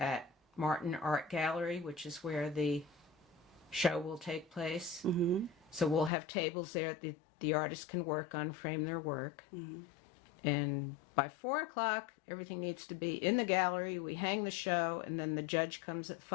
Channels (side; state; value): right; drops out; at 6.1 s